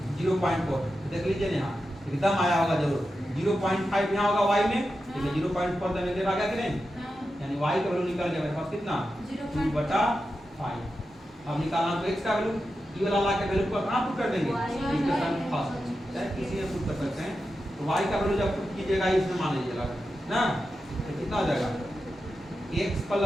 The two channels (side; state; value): both; normal; correlation 0.90